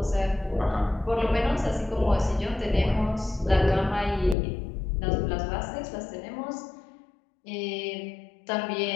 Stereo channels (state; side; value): drops out; right; at 4.4 s